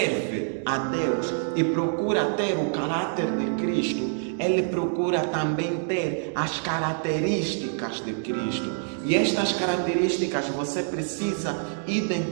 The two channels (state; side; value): silent; left; digital silence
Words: a Deus e procura ter o caráter de Cristo, ele procura também ter as características de Cristo. E estas características você precisa